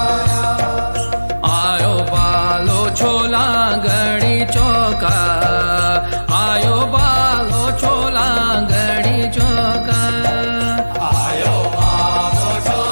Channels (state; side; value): inverted; both; correlation -1.00